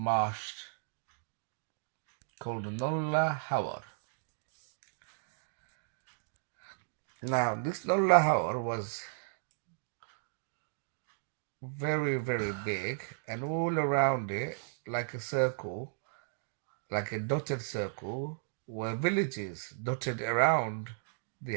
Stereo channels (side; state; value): left; silent; digital silence